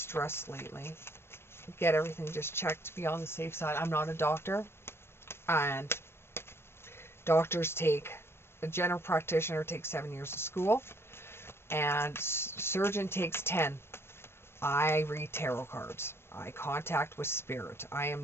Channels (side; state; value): right; late; 0.12 ms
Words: lately. Get everything just checked to be on the safe side. I'm not a doctor, and a general practitioner takes 7 years of school, and surgeon takes 10. I read tarot cards. eye contact with spirit. I